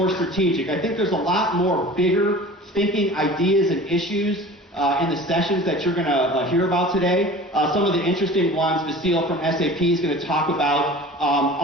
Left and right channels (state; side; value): normal; both; correlation 0.40